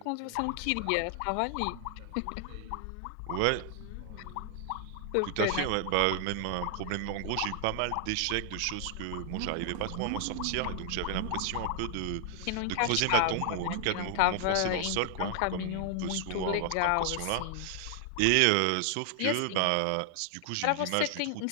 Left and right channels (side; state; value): both; different; correlation 0.00